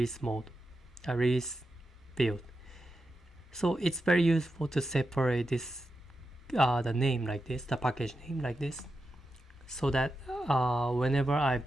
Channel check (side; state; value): both; normal; correlation 0.89